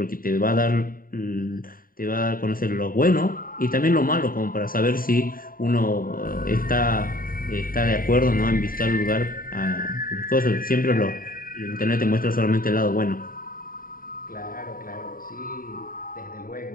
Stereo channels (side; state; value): right; late; 0.41 ms